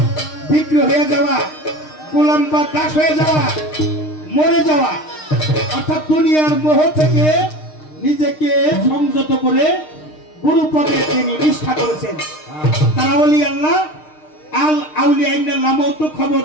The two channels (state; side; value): late; right; 6.5 ms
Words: বিক্রি হয়ে যাওয়া, গোলাম বা দাস হয়ে যাওয়া, মরে যাওয়া, অর্থাৎ দুনিয়ার মোহ থেকে নিজেকে সংযত করে গুরু পদে তিনি নিষ্ঠা করেছেন। তারা ওলি আল্লাহ আল আউলিয়া ইন্নাল্লাহ মউত,